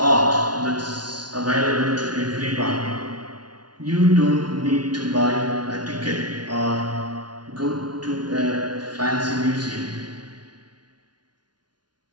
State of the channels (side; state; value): left; late; 0.70 ms